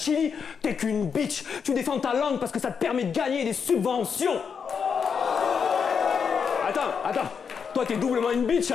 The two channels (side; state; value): right; quieter; 6.4 dB